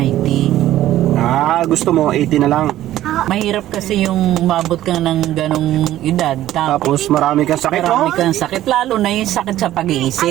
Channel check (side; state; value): left; quieter; 13.7 dB